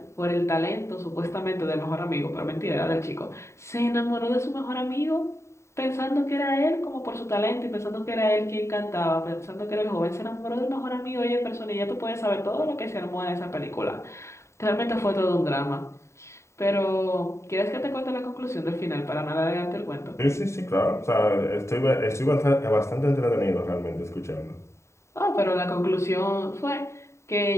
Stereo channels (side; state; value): right; late; 0.14 ms